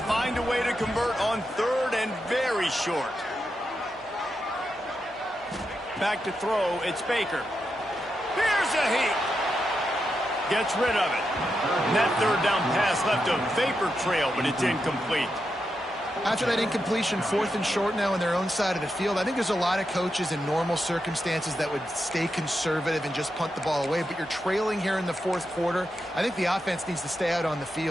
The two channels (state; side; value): normal; both; correlation 0.86